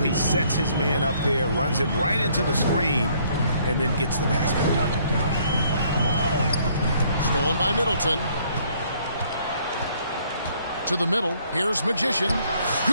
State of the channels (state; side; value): inverted; both; correlation -0.64